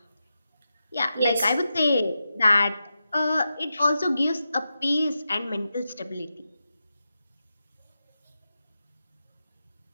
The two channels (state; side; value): inverted; both; correlation -0.89